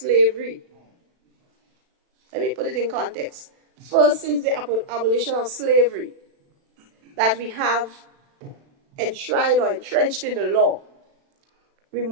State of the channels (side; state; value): left; late; 36 ms